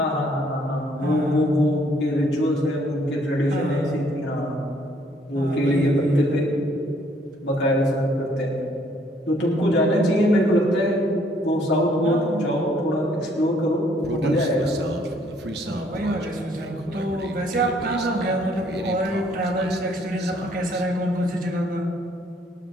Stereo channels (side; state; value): both; normal; correlation 0.65